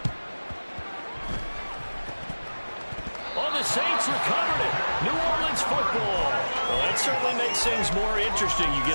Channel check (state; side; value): inverted; both; correlation -1.00